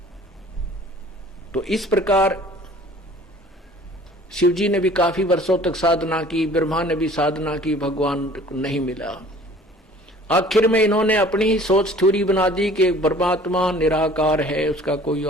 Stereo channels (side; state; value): both; normal; correlation 0.50